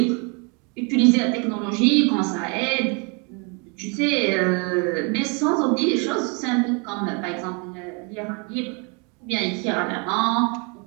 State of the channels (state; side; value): quieter; left; 33.3 dB